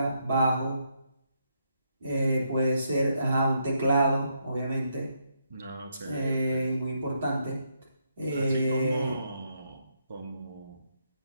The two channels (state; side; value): inverted; both; correlation -0.77